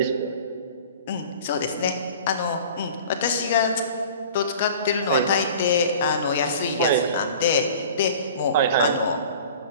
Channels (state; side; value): inverted; both; correlation -0.42